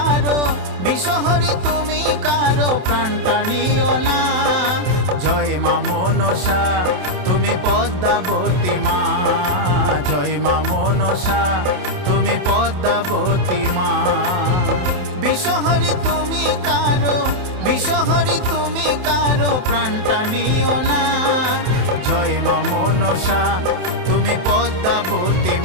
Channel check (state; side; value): late; left; 27 ms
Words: বিষহরি তুমি কারো প্রাণটা নিও না। জয় মা মনসা তুমি পদ্মাবতী মা, জয় মা মনসা তুমি পদ্মাবতী মা। বিষহরি তুমি কারো, বিষহরি তুমি কারো প্রাণটা নিও না। জয় মা মনসা তুমি পদ্মাবতী